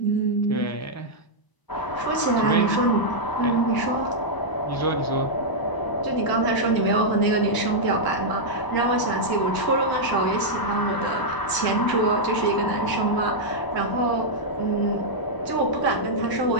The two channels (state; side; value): late; right; 1.0 ms